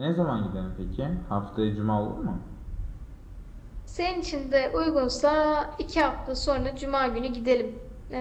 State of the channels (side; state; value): both; identical; correlation 1.00